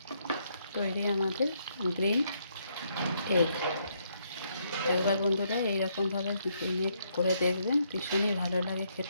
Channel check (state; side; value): inverted; both; correlation -0.74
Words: তৈরি আমাদের গ্রিন এগ। একবার বন্ধুরা এইরকমভাবে গ্রিন এগ করে দেখবেন, ভীষণই ভালো লাগে